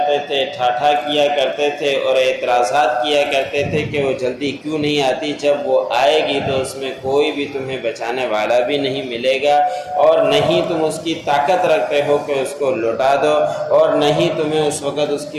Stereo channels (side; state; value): both; identical; correlation 1.00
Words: تھے، ٹھاٹھا کیا کرتے تھے اور اعتراضات کیا کرتے تھے کہ وہ جلدی کیوں نہیں آتی، جب وہ آئے گی تو اس میں کوئی بھی تمہیں بچانے والا بھی نہیں ملے گا، اور نہیں تم اس کی طاقت رکھتے ہو کہ اس کو لوٹا دو، اور نہیں تمہیں اس وقت اس